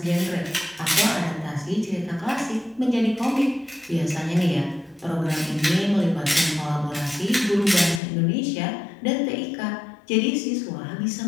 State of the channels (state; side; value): drops out; right; at 8.0 s